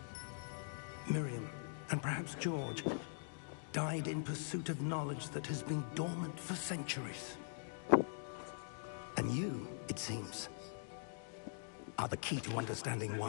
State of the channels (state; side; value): silent; right; digital silence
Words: Miriam, and perhaps George, died in pursuit of knowledge that has been dormant for centuries. And you, it seems, are the key to understanding